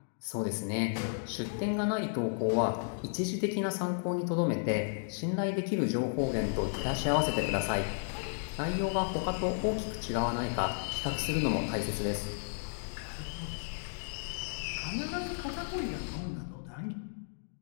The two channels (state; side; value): silent; right; digital silence